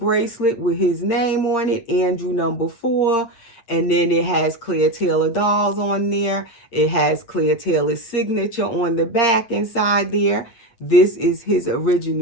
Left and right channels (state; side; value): late; right; 8.6 ms